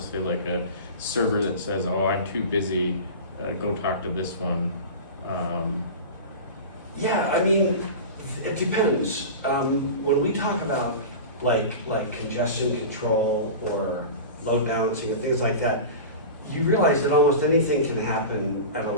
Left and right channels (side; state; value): both; inverted; correlation -0.31